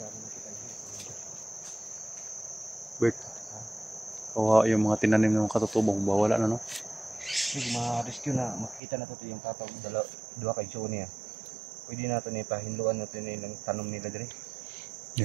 Bert, kawawa yung mga tinanim ng mga katutubo, wala na no. Ma-rescue na, makikita na ito yung tatawag dua kay Joe niya. Pwede natin ipahinluan natin yung tanong nila diri.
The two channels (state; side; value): drops out; left; at 8.8 s